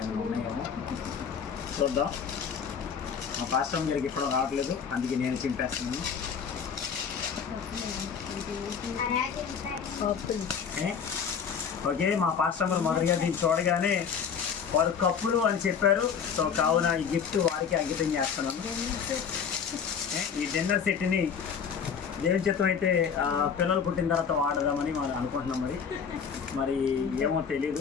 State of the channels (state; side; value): quieter; right; 6.8 dB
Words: ఏమైనా ఉన్నాయేమో చూద్దాం. మా పాస్టర్ గారికి ఇప్పుడు రావట్లేదు, అందుకే నేను చింపేస్తున్నాను. ఓకే, మా పాస్టర్ గారు మొదటిగా దీన్ని చూడగానే వారు కప్పులు అని చెప్పారు. సో కావున ఈ గిఫ్ట్ వారికి అంకితం చేస్తున్నాను. ఈ డిన్నర్ సెట్ని దేవుని చిత్తం అయితే పిల్లలు పుట్టిన తర్వాత వాడదామని మనం అనుకుంటున్నాం. మరి ఏమో